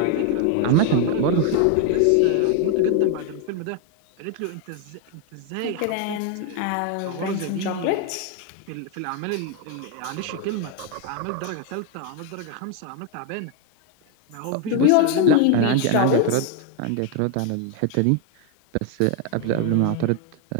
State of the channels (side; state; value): both; different; correlation 0.01